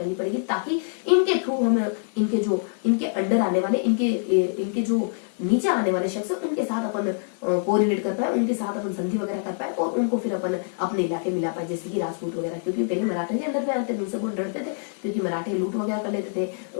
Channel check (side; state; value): right; silent; digital silence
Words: पड़ेगी, ताकि इनके थ्रू हम इनके अंडर आने वाले, इनके जो नीचे आने वाले शख्स उनके साथ अपन कोरिलेट कर पाए, उनके साथ अपन संधि वगैरह कर पाए और उनको फिर अपन अपने इलाके मिला पाए, जैसे कि राजपूत वगैरह। क्योंकि पहले मराठे के अंडर में आते थे, उनसे बहुत डरते थे क्योंकि मराठे लूट वगैरह कर लेते थे